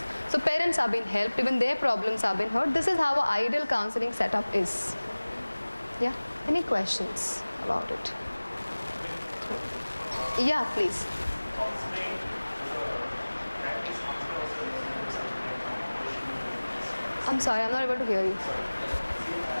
So parents are being helped, even their problems are being heard. This is how an ideal counseling setup is. Yeah, any questions about it? Yeah, please. I'm sorry, I'm not able to hear you.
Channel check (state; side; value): inverted; both; correlation -1.00